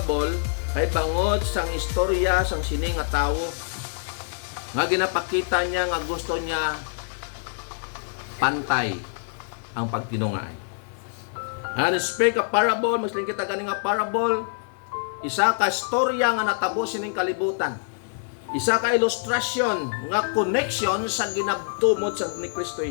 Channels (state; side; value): silent; right; 59 dB below the other